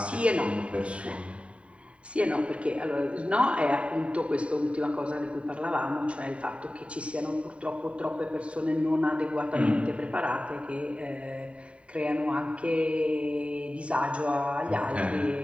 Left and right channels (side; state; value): left; late; 0.062 ms